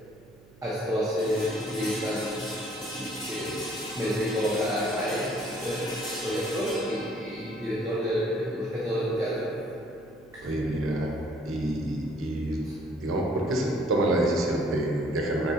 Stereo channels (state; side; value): noise; right; hum, 25 dB below the sound